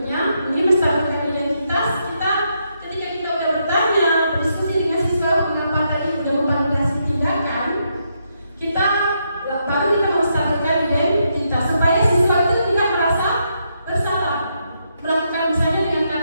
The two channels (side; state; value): both; inverted; correlation -0.79